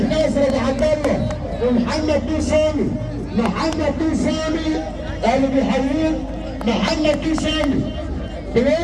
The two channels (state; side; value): identical; both; correlation 1.00